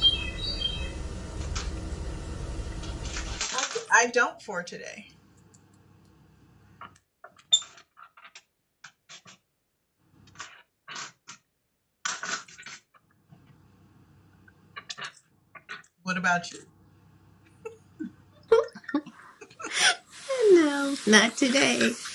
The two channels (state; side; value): identical; both; correlation 1.00